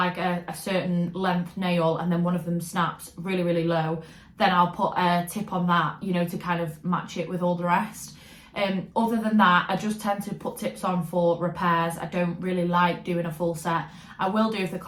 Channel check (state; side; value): identical; both; correlation 1.00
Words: a certain length nail and then one of them snaps really low, then I'll put a tip on that, you know, to kind of match it with all the rest. Other than that, I just tend to put tips on for repairs. I don't really like doing a full set. I will do if the